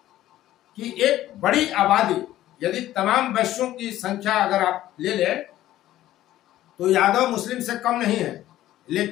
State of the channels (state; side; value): quieter; right; 14.0 dB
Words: कि एक बड़ी आबादी, यदि तमाम वैश्यों की संख्या अगर आप ले लें तो यादव मुस्लिम से कम नहीं है,